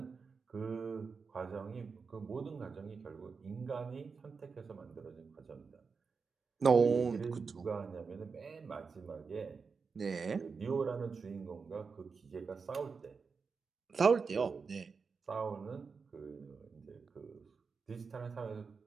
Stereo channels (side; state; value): left; quieter; 5.1 dB